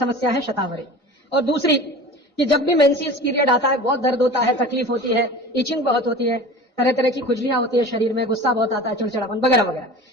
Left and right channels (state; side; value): normal; both; correlation 0.37